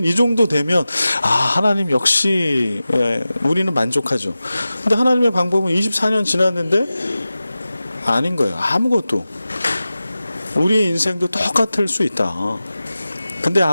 이 정도 되면 하나님 역시 우리는 만족하죠. 근데 하나님의 방법은 24년 지났는데 아닌 거예요. 아무것도. 우리의 인생도 똑같을 수 있다. 근데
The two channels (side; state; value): both; inverted; correlation -0.95